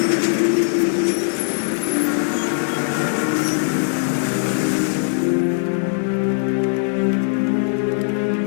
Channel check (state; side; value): silent; right; 66 dB below the other